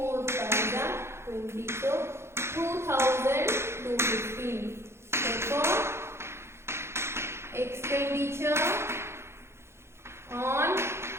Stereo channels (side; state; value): left; late; 0.12 ms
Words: fives are 20. So 2,215. Therefore, expenditure on